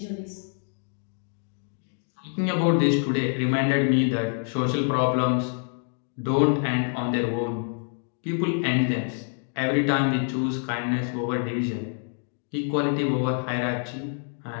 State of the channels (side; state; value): right; silent; 59 dB below the other